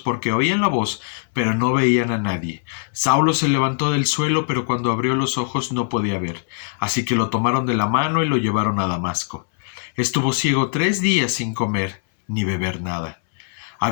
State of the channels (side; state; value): right; silent; 65 dB below the other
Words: porque oían la voz, pero no veían a nadie. Saulo se levantó del suelo, pero cuando abrió los ojos no podía ver. Así que lo tomaron de la mano y lo llevaron a Damasco. Estuvo ciego 3 días sin comer ni beber nada.